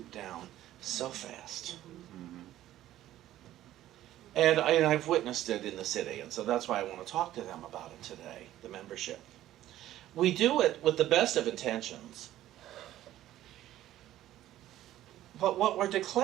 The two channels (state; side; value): quieter; left; 13.6 dB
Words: down so fast. And I've witnessed it in the city, and so that's why I want to talk to them about it today, the membership. We do it with the best of intentions, but what we're